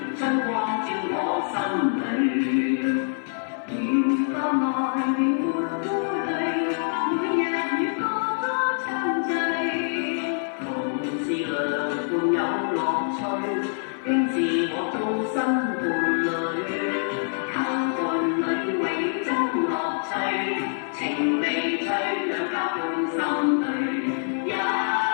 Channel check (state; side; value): silent; right; 62 dB below the other